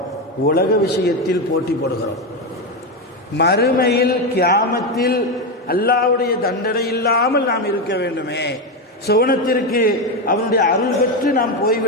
உலக விஷயத்தில் போட்டி போடுகிறோம். மறுமையில் கியாமத்தில் அல்லாஹ்வுடைய தண்டனை இல்லாமல் நாம் இருக்க வேண்டுமே, சுவனத்திற்கு அவனுடைய அருள் பெற்று நாம்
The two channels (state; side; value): normal; both; correlation 0.11